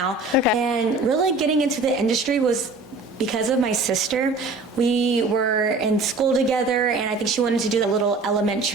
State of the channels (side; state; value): left; quieter; 3.5 dB